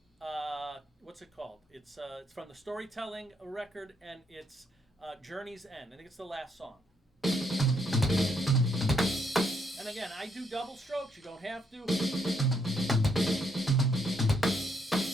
What's it called? It's from the Storytelling record, and it's Journey's End. I think it's the last song. And again, I do double strokes. You don't have to.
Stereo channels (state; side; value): normal; both; correlation 0.74